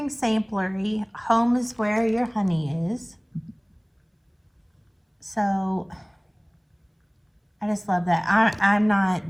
Samplery. Home is where your honey is. So I just love that. I'm not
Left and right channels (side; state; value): both; identical; correlation 1.00